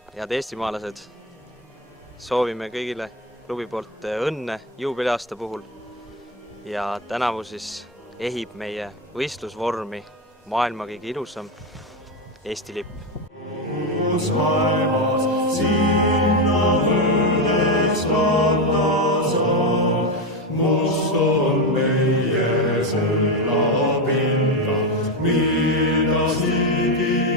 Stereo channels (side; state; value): both; normal; correlation 0.12